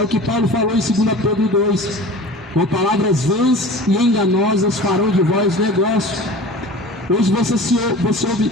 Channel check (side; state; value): both; normal; correlation 0.38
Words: o que Paulo falou em 2 Pedro 2, com palavras vãs e enganosas farão de vós negócio. Hoje você ouve